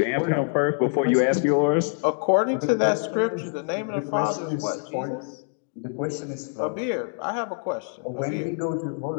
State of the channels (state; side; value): silent; right; 62 dB below the other